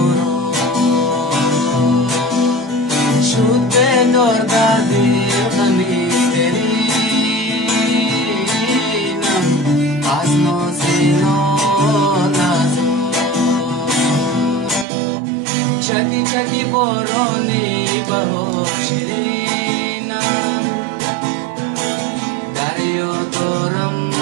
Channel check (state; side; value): drops out; left; at 14.9 s